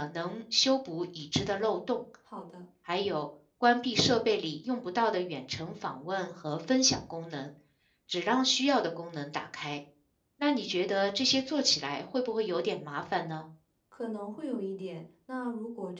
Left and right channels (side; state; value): both; identical; correlation 1.00